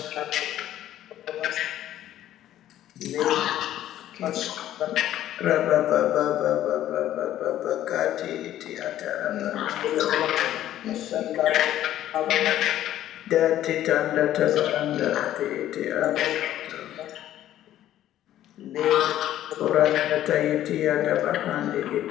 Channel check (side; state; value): right; quieter; 12.6 dB